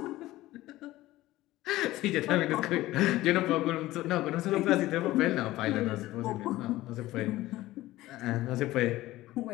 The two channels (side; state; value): right; quieter; 16.8 dB